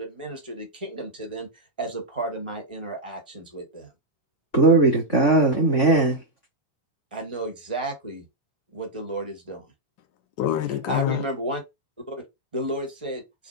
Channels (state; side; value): late; right; 3.5 ms